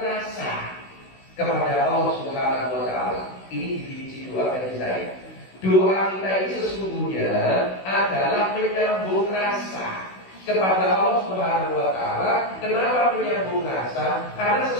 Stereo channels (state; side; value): late; right; 16 ms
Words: kepada Allah Subhanahu wa taala. Ini definisi doa dari saya. Doa kita ini sesungguhnya adalah menyambung rasa kepada Allah Subhanahu wa taala. Kenapa menyambung rasa? Karena